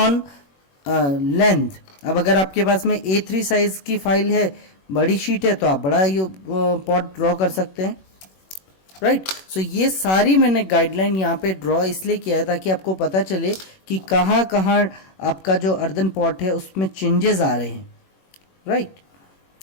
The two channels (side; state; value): right; late; 21 ms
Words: length. अब अगर आपके पास में A3 साइज की फाइल है, बड़ी शीट है, तो आप बड़ा ये पॉट ड्रॉ कर सकते हैं, राइट। सो ये सारी मैंने गाइडलाइन यहाँ पे ड्रॉ इसलिए किया है ताकि आपको पता चले कि कहाँ कहाँ आपका जो अर्दन पॉट है उसमें चेंजेस आ रहे हैं, राइट।